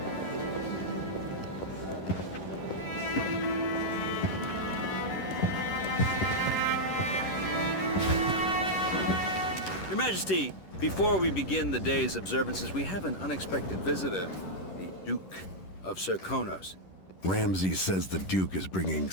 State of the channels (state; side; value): late; right; 11 ms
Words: Your Majesty, before we begin the day's observances, we have an unexpected visitor, the Duke of Serkonos. Ramsay says the Duke is bringing